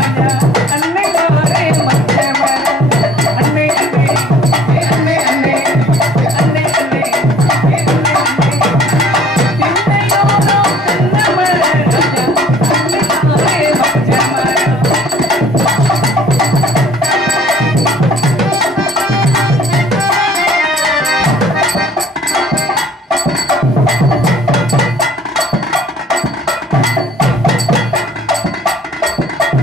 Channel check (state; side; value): normal; both; correlation 0.54